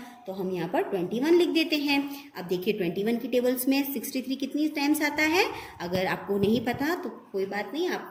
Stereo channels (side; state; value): both; identical; correlation 1.00